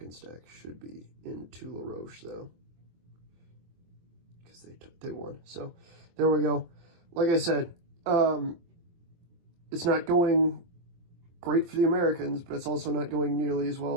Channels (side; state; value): left; late; 23 ms